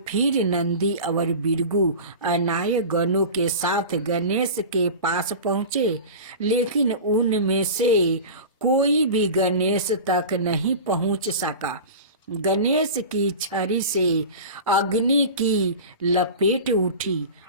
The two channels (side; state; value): both; inverted; correlation -0.32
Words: फिर नंदी और बिरगू अनाय गणों के साथ गणेश के पास पहुँचे, लेकिन उनमें से कोई भी गणेश तक नहीं पहुँच सका। गणेश की छड़ी से अग्नि की लपेट उठी